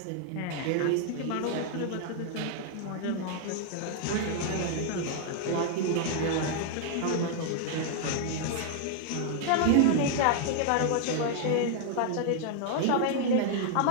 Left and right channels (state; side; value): different; both; correlation 0.00